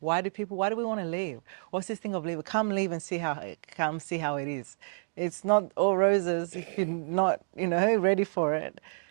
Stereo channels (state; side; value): silent; left; digital silence